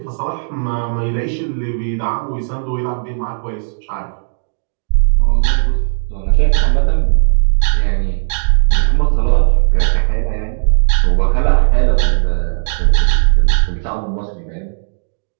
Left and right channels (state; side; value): silent; left; digital silence